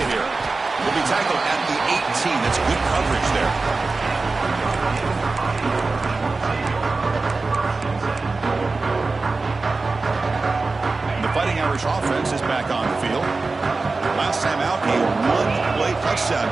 here. Will be tackled at the 18. That's good coverage there. The Fighting Irish offense is back on the field. Last time out, a one-play touchdown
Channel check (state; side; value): quieter; left; 3.8 dB